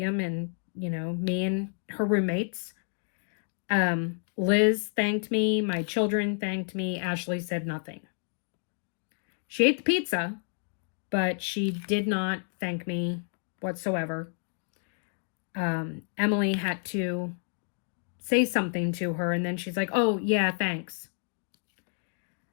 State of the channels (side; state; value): right; silent; 58 dB below the other